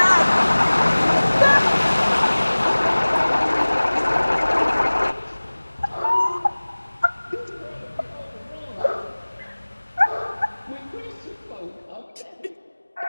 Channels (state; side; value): inverted; both; correlation -1.00